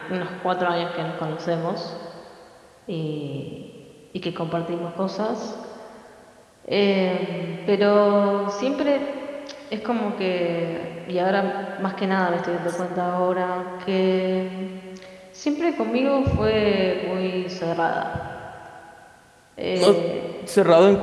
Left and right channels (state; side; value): identical; both; correlation 1.00